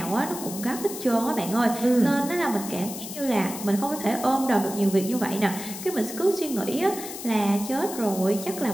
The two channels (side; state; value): left; noise; hiss, 10 dB below the sound